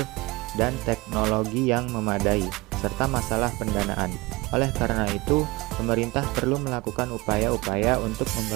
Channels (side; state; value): left; quieter; 22.9 dB